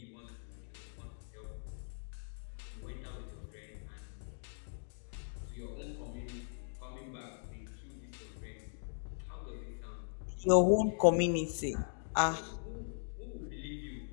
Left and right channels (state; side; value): silent; right; digital silence